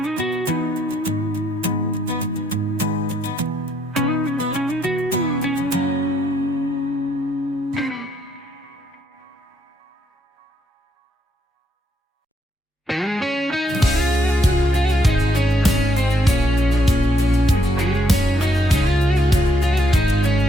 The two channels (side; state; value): both; normal; correlation 0.72